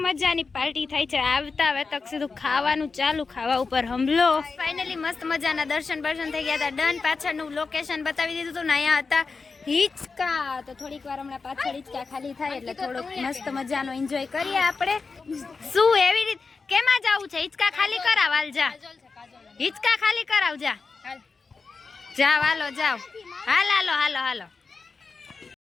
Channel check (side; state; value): right; quieter; 4.5 dB